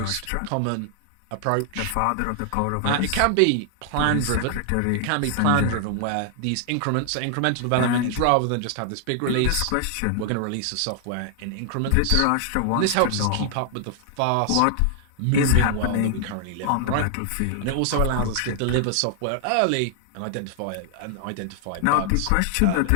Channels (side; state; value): both; different; correlation 0.00